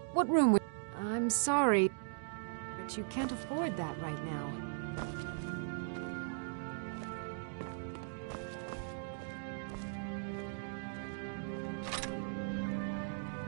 What room would... I'm sorry, but you can't afford that right now.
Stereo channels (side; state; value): left; silent; digital silence